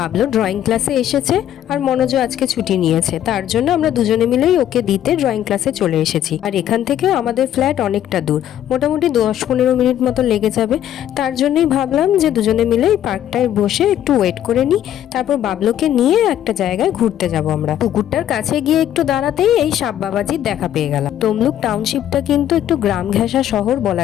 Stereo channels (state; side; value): quieter; right; 11.2 dB